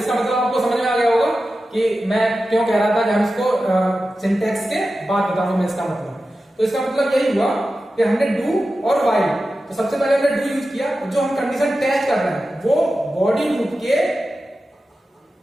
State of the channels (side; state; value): both; normal; correlation 0.93